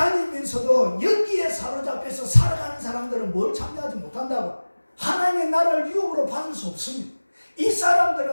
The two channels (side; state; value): both; inverted; correlation -1.00